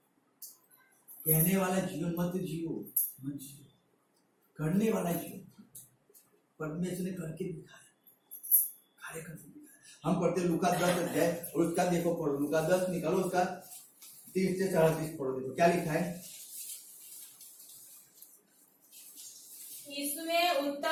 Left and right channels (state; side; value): identical; both; correlation 1.00